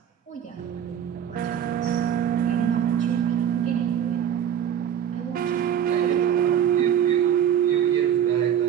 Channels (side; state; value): left; quieter; 9.4 dB